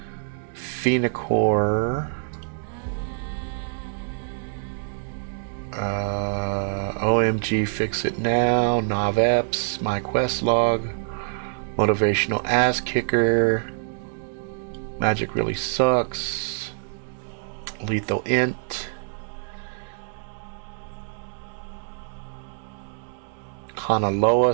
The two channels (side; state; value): left; silent; digital silence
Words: Phenacor, OMG Fix It Now, NavEps, My Quest Log, Motivational Ass Kicker, Magic Really Sucks, Lethal Int,